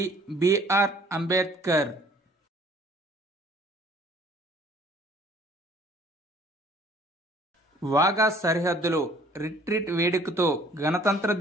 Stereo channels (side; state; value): both; normal; correlation 0.56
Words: BR Ambedkar. Wagah సరిహద్దులో రిట్రీట్ వేడుకతో గణతంత్ర